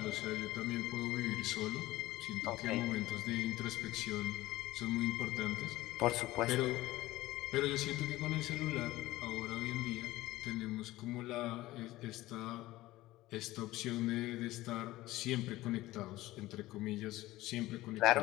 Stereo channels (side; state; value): right; quieter; 17.3 dB